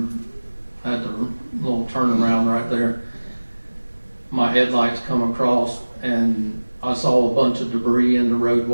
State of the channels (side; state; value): both; inverted; correlation -1.00